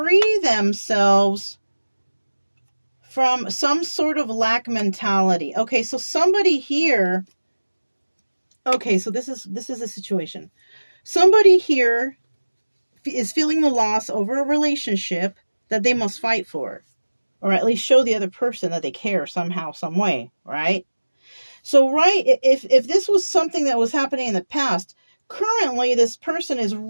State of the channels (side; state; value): both; inverted; correlation -1.00